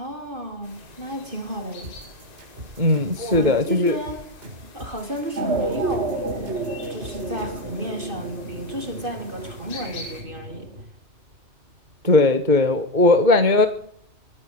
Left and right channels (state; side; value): late; left; 2.2 ms